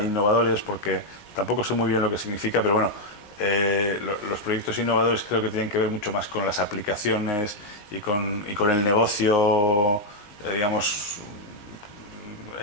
porque tampoco sé muy bien lo que significa, pero bueno, los proyectos innovadores creo que tienen que ver mucho más con las aplicaciones y con el negocio, digamos,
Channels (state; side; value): late; right; 19 ms